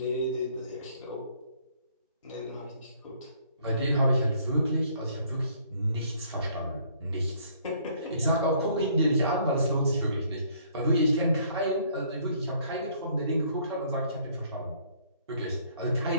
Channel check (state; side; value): inverted; both; correlation -0.62